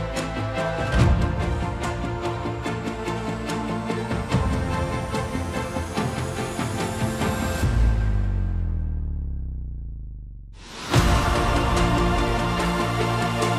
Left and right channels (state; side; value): identical; both; correlation 1.00